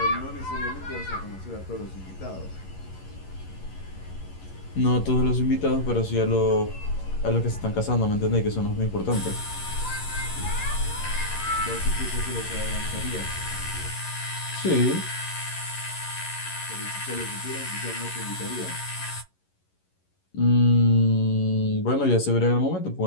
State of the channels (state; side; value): late; right; 11 ms